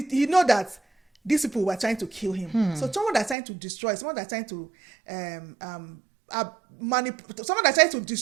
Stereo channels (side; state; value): left; drops out; at 3.4 s